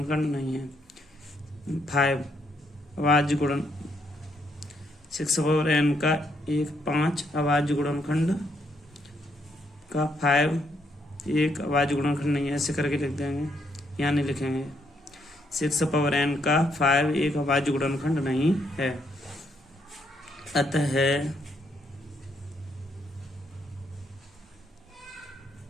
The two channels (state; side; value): normal; both; correlation 0.75